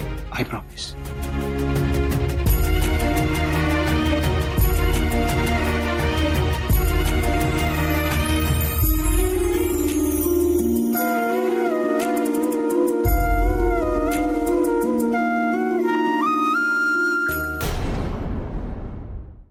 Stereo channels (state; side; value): identical; both; correlation 1.00